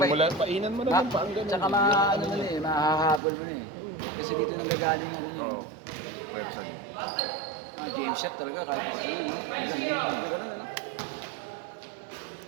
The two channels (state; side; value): drops out; left; at 3.2 s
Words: Painan mo na ng pang ganun. Tsaka ano mo na eh, mahahabol mo na eh. Kasi dito nang gagaling ano yun. Oo, pero saan yun? Game shot talaga kahit pa sa'yo.